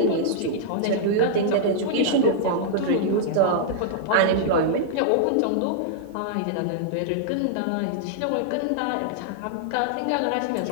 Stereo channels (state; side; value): different; both; correlation -0.01